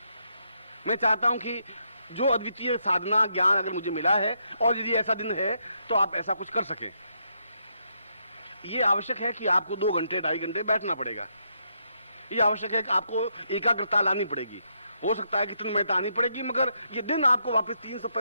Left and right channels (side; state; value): both; inverted; correlation -0.77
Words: मैं चाहता हूं कि जो अद्वितीय साधना ज्ञान अगर मुझे मिला है, और यदि ऐसा दिन है तो आप ऐसा कुछ कर सकें। ये आवश्यक है कि आपको 2 घंटे 2.5 घंटे बैठना पड़ेगा। ये आवश्यक है कि आपको एकाग्रता लानी पड़ेगी। हो सकता है कि तन्मयता आनी पड़ेगी, मगर ये दिन आपको वापस